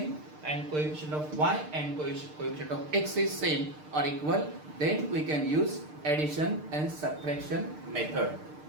and coefficient of y and coefficient of x is same or equal, then we can use addition and subtraction method.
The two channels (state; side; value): late; left; 6.6 ms